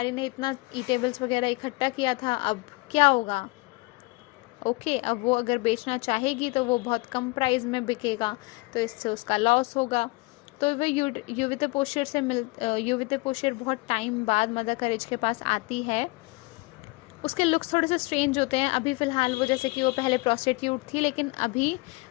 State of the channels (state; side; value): quieter; right; 25.2 dB